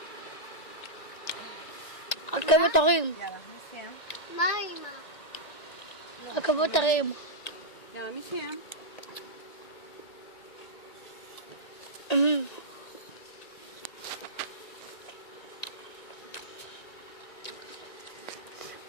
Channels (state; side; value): late; right; 1.9 ms